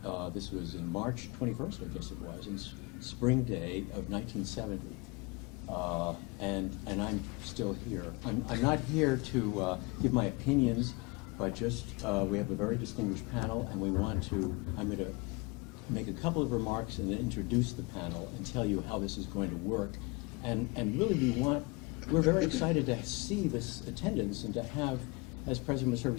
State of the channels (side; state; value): right; quieter; 26.9 dB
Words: This was in March 21st, I guess it was, in spring day of 1970. And I'm still here. I'm not here to give my opinions, but just we have a very distinguished panel, and I'm going to make a couple of remarks and then introduce the panel and tell you how this is going to work. And really we're very excited to see this attendance and to have, as President Missouri